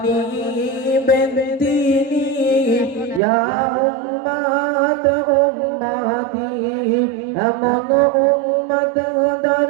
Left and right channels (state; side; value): drops out; left; at 3.2 s